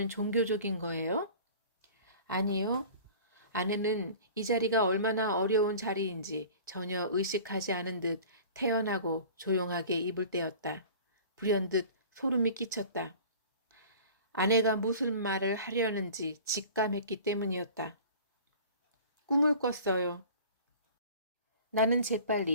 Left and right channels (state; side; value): inverted; both; correlation -0.42